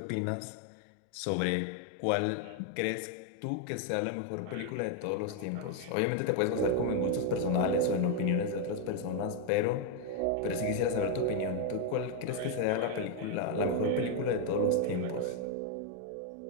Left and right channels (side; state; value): both; different; correlation 0.01